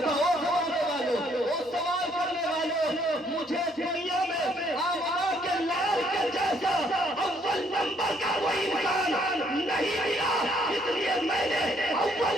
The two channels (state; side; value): normal; both; correlation 0.67